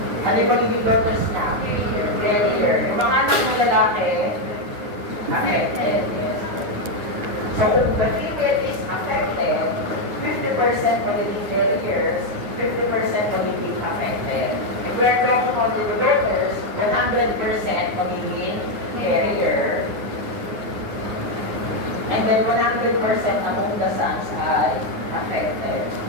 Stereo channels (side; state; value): left; late; 9.6 ms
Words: ano yung magiging daughters niya? Carrier. Yung mga anak ng lalaki, affected. Yes. So kung the female is affected, 50% magiging carriers, 50% magiging affected. If we're talking about the daughters, 100% magiging carrier. And then 100% among the sons ay affected.